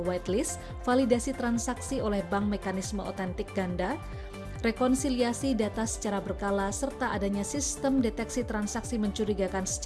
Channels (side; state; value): both; identical; correlation 1.00